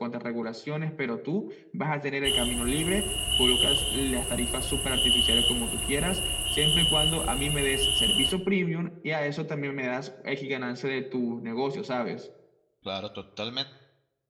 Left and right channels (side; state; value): both; identical; correlation 1.00